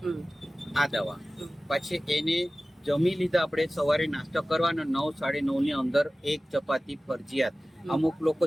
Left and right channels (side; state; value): both; normal; correlation 0.97